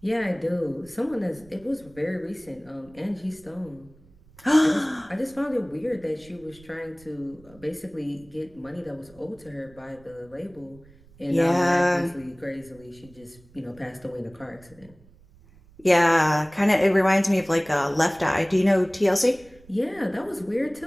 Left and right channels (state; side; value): noise; right; rumble, 26 dB below the sound